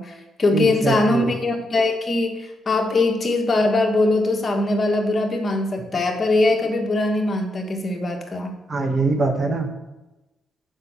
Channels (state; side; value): normal; both; correlation 0.81